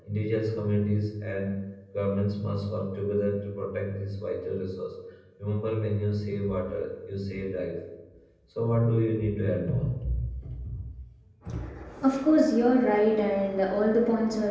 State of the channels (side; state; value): both; identical; correlation 1.00